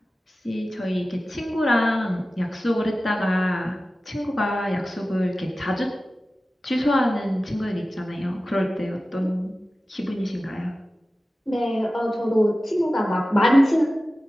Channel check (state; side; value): normal; both; correlation 0.96